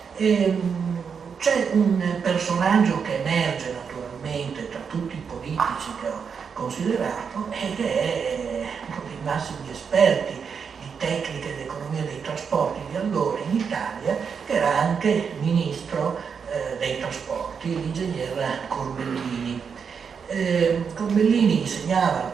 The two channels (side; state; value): left; quieter; 6.4 dB